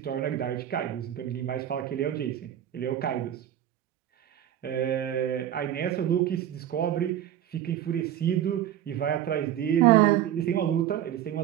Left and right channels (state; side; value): quieter; left; 11.2 dB